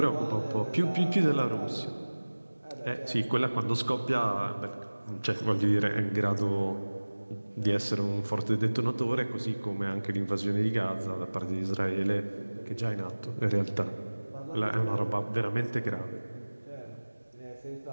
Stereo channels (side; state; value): both; inverted; correlation -1.00